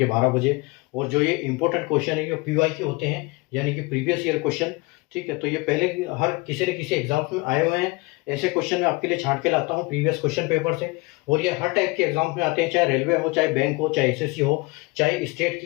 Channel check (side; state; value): right; quieter; 25.1 dB